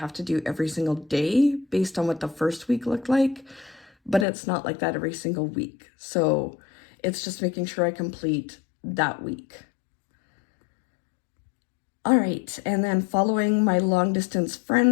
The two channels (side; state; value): right; drops out; at 4.2 s